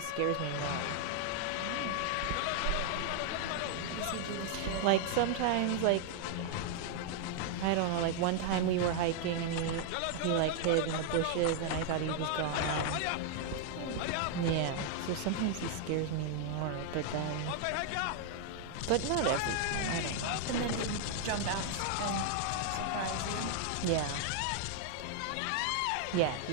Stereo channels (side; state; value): both; different; correlation 0.00